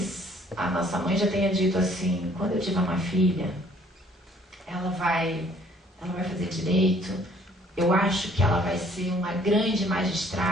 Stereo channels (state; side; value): normal; both; correlation 0.59